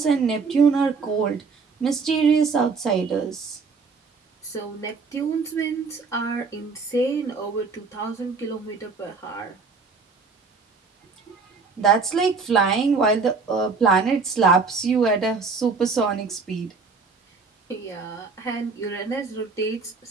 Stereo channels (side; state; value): left; quieter; 4.7 dB